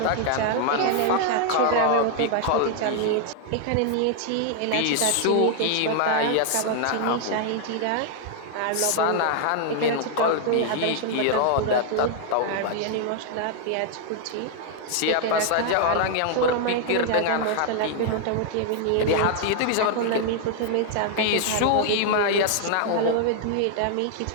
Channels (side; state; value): both; different; correlation 0.00